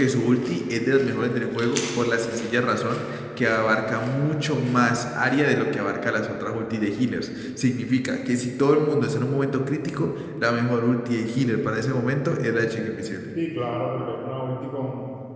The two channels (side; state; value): both; identical; correlation 1.00